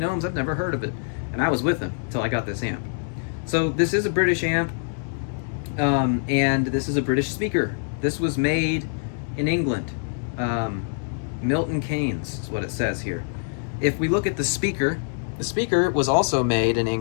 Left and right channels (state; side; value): silent; right; digital silence